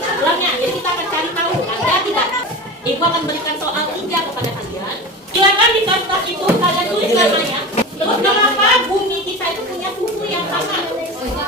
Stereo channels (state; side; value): normal; both; correlation 0.29